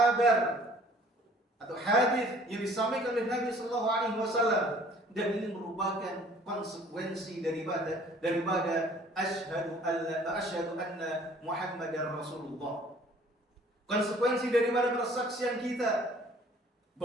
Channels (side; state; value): both; normal; correlation 0.54